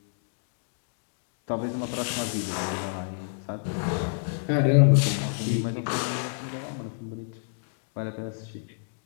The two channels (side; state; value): right; silent; digital silence